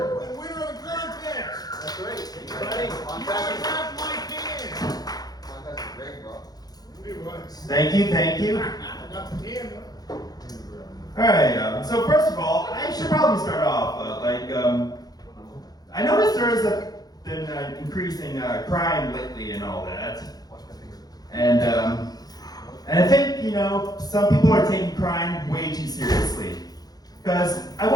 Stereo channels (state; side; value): late; right; 0.19 ms